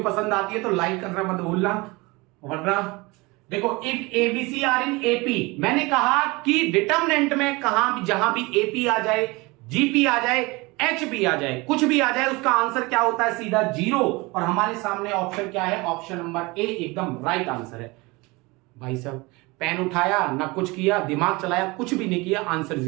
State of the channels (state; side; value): quieter; left; 24.3 dB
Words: पसंद आती है तो लाइक करना मत भूलना। वरना देखो if ABC are in AP, मैंने कहा कि डिटर्मिनेंट में कहां भी जहां भी एपी आ जाए, जीपी आ जाए, एच भी आ जाए, कुछ भी आ जाए, उसका आंसर क्या होता है सीधा 0। और हमारे सामने ऑप्शन क्या है, ऑप्शन नंबर ए एकदम राइट आंसर है। भाई साहब पेन उठाया ना कुछ किया, दिमाग चलाया, कुछ भी नहीं किया, आंसर